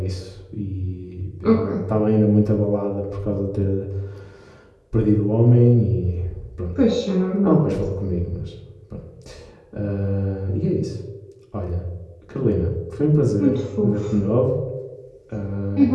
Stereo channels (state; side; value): identical; both; correlation 1.00